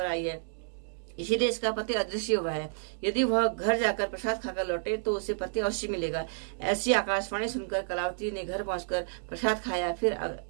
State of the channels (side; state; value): left; silent; digital silence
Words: आई है। इसीलिए इसका पति अदृश्य हुआ है। यदि वह घर जाकर प्रसाद खाकर लौटे तो उसे पति अवश्य मिलेगा। ऐसी आकाशवाणी सुनकर कलावती ने घर पहुंचकर प्रसाद खाया, फिर